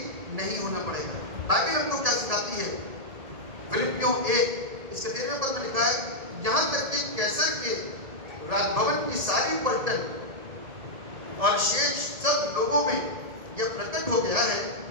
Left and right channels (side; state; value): left; late; 1.7 ms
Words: नहीं होना पड़ेगा। बाइबल हमको क्या सिखाती है? फिलिपियों 1 इसके 13वें पद में लिखा है, यहाँ तक कि कैसर के राजभवन की सारी पलटन और शेष सब लोगों में यह प्रकट हो गया है